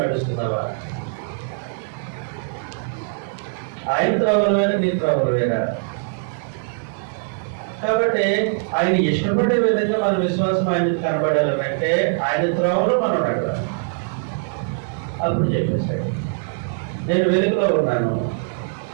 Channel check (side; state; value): left; silent; 57 dB below the other